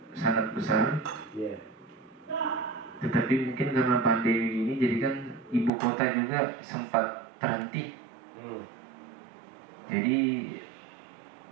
sangat besar. Tetapi mungkin karena pandemi ini jadi kan ibu kota juga sempat terhenti. Jadi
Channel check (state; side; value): drops out; left; at 5.7 s